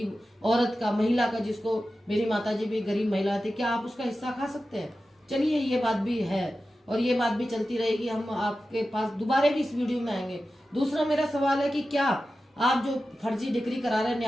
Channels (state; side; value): normal; both; correlation 0.93